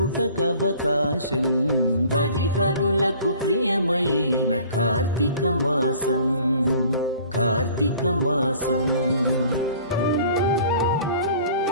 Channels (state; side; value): inverted; both; correlation -0.50